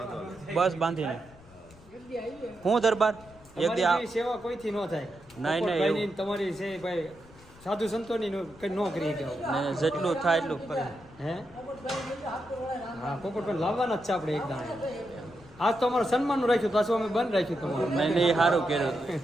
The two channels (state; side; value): noise; left; rumble, 23 dB below the sound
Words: બસ બાંધીને. હું દરબાર એક દી સેવા કોઈથી ન થાય. નહીં નહીં, તમારી છે ભાઈ સાધુ સંતોની કઈ ન કરી કે જેટલું થાય એટલું કરે. હે હા પોપટ પણ લાવવાના જ છે આપણે એક દાણા. આજ તો અમારું સન્માનનું રાખ્યું, પાછું અમે બંધ રાખ્યું તમારું. નહીં નહીં, એ સારું કર્યું.